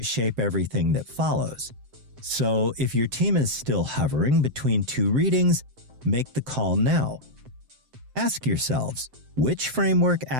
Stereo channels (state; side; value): late; left; 7.7 ms